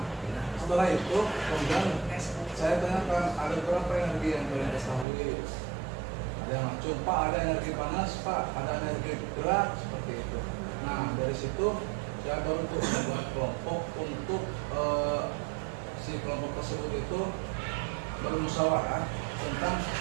setelah itu kemudian saya tanyakan ada berapa energi yang kalian ketahui? Ada yang macam Pak, ada energi panas Pak, ada energi gerak seperti itu. Nah, dari situ saya baru tuh membuat kelompok untuk si kelompok tersebut itu bermusyawarah tentang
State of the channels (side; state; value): left; drops out; at 5.1 s